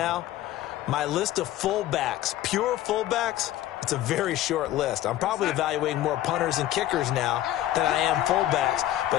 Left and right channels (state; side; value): quieter; right; 13.7 dB